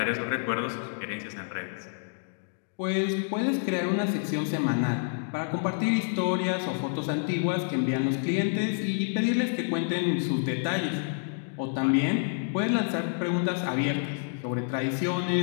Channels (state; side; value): silent; right; digital silence